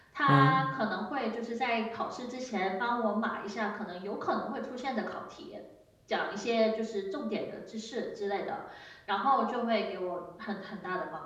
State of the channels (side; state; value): both; identical; correlation 1.00